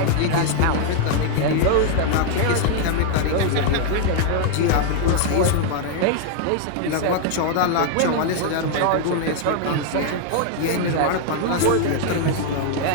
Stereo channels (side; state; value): both; different; correlation 0.00